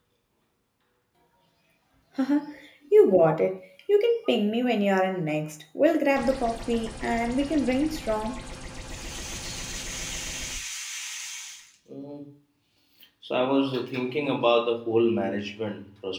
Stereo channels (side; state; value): both; identical; correlation 1.00